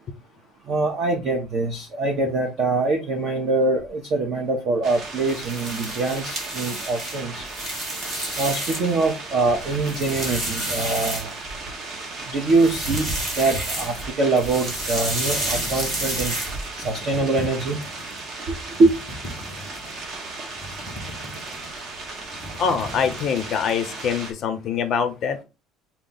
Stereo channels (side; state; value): both; normal; correlation 0.47